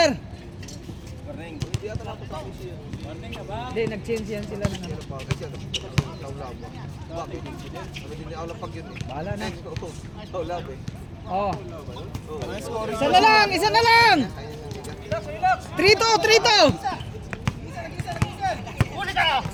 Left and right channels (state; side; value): identical; both; correlation 1.00